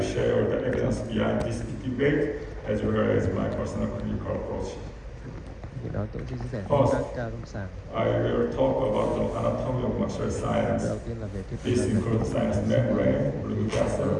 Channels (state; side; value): identical; both; correlation 1.00